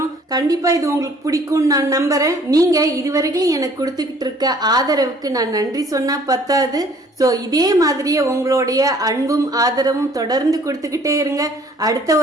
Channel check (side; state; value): both; normal; correlation 0.57